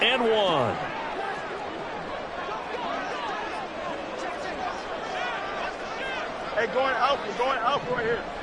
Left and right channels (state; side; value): identical; both; correlation 1.00